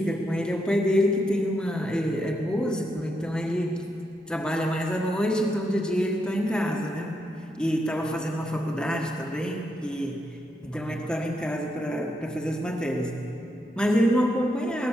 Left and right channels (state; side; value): normal; both; correlation 0.81